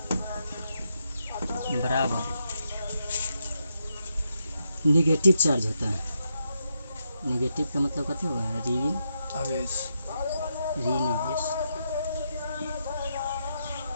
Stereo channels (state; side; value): inverted; both; correlation -0.82